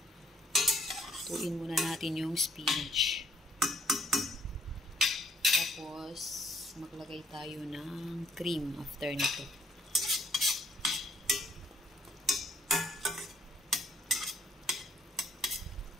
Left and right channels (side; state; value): both; normal; correlation 0.64